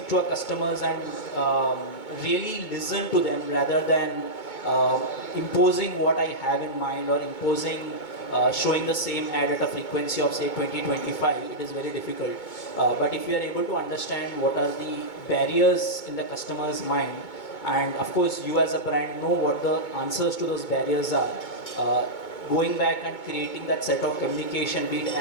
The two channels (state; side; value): late; right; 2.2 ms